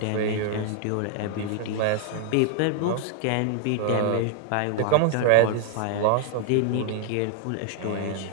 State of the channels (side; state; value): both; different; correlation 0.00